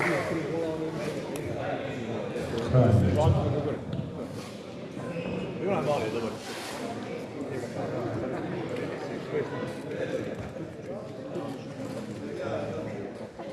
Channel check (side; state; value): both; identical; correlation 1.00